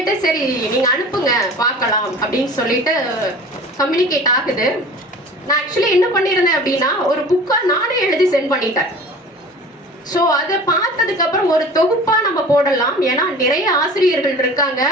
சரி நீங்கள் அனுப்புங்க பார்க்கலாம் அப்படின்னு சொல்லிட்டு கம்யூனிகேட் ஆகுது. நான் ஆக்சுவலி என்ன பண்ணியிருந்தேன் அப்படின்னா, ஒரு புக்காக நானே எழுதி சென்ட் பண்ணிட்டேன். ஸோ அதை பார்த்ததுக்கப்புறம் ஒரு தொகுப்பாக நம்ம போடலாம், ஏன்னா நிறைய ஆசிரியர்கள் இருக்காங்க.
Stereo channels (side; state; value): both; normal; correlation 0.41